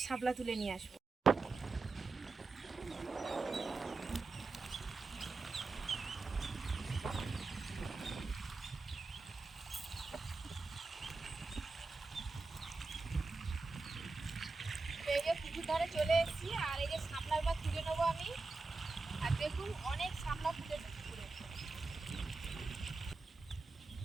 শাপলা তুলে নিয়ে আসবো। এই যে পুকুর ধারে চলে এসেছি, আর এই যে শাপলার বা তুলে নেবো আমি। আর দেখুন অনেক শাপলা ফুটেছে পুকুরে।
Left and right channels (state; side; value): quieter; left; 3.8 dB